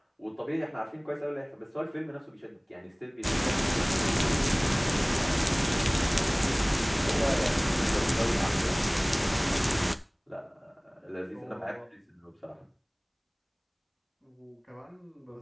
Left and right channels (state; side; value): identical; both; correlation 1.00